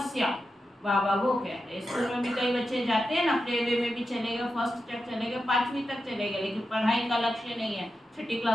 बाबा वो कहते हैं। स्कूल में भी कई बच्चे जाते हैं ना, प्ले वे में भी चले गए, फर्स्ट तक चले गए, 5वीं तक चले गए, लेकिन पढ़ाई का लक्ष्य नहीं है। 6ठी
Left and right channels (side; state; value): both; normal; correlation 0.89